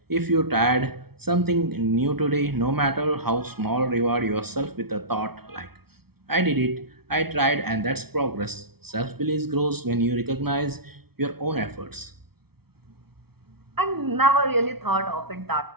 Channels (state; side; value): late; left; 0.95 ms